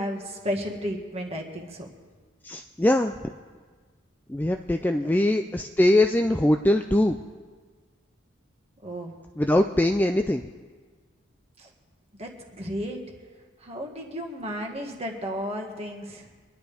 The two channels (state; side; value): normal; both; correlation 0.86